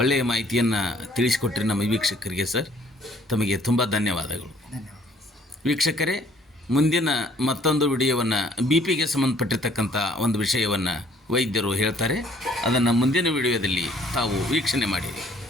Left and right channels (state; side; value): normal; both; correlation 0.60